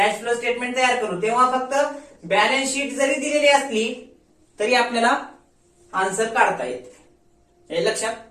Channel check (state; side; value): identical; both; correlation 1.00